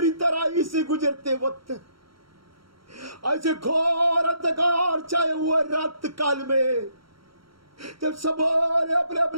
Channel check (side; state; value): left; late; 0.74 ms